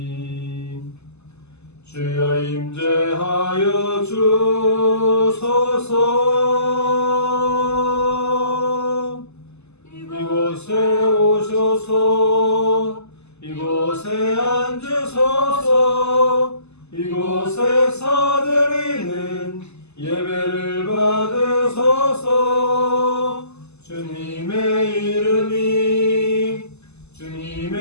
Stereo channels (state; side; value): late; right; 0.80 ms